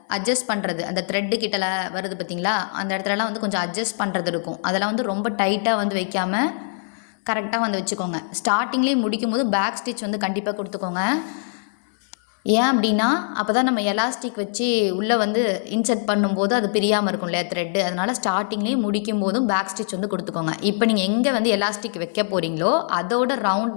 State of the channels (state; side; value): silent; right; 59 dB below the other